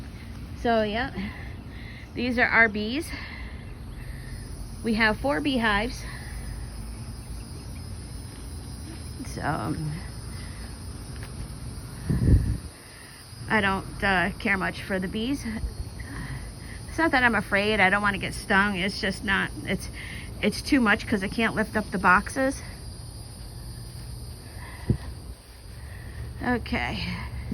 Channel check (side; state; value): both; identical; correlation 1.00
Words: So yeah, these are our bees. We have 4 beehives. I don't care much for the bees. It's not that I'm afraid. I don't want to get stung. It's just not, it's too much because I can't lift up the boxes. Okay.